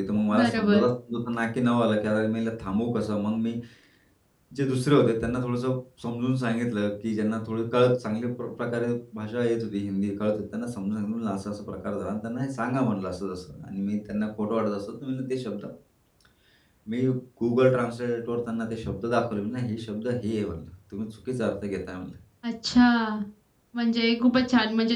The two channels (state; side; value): identical; both; correlation 1.00